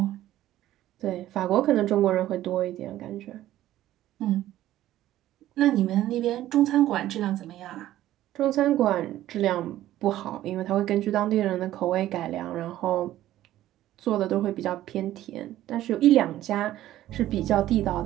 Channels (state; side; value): quieter; left; 13.8 dB